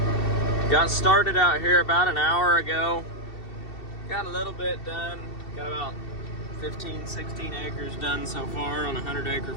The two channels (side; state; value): right; late; 2.7 ms